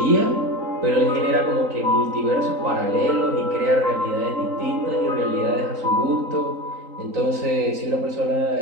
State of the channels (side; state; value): left; late; 3.8 ms